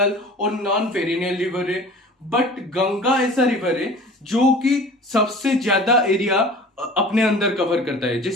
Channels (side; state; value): both; normal; correlation 0.42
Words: और नॉन पेरिनियल रिवर है, बट गंगा ऐसा रिवर है जो कि सबसे ज्यादा एरिया अपने अंदर कवर करता है।